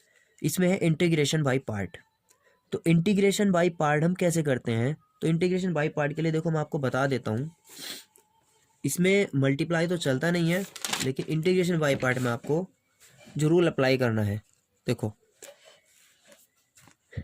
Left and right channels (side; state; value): both; identical; correlation 1.00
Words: इसमें है इंटीग्रेशन बाय पार्ट। तो इंटीग्रेशन बाय पार्ट हम कैसे करते हैं, तो इंटीग्रेशन बाय पार्ट के लिए देखो मैं आपको बता देता हूँ, इसमें मल्टीप्लाई तो चलता नहीं है, लेकिन इंटीग्रेशन बाय पार्ट में आपको जो रूल अप्लाई करना है, देखो